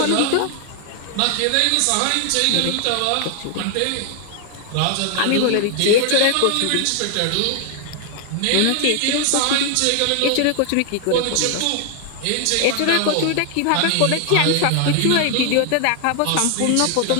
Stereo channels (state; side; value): different; both; correlation 0.00